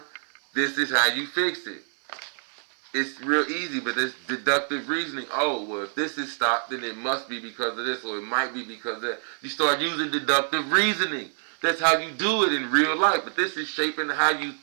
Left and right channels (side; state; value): left; silent; digital silence